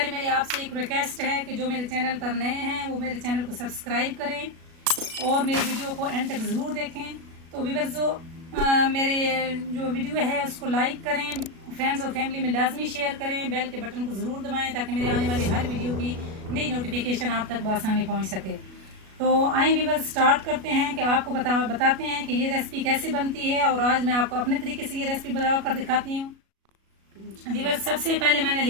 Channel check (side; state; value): left; late; 37 ms